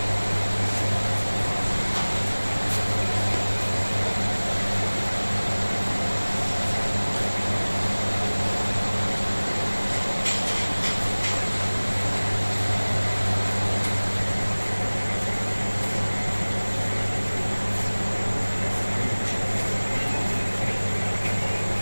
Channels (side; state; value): both; inverted; correlation -1.00